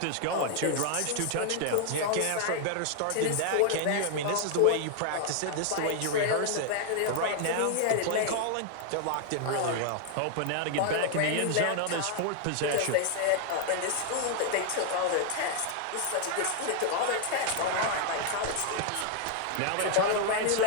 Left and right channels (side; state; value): both; different; correlation 0.00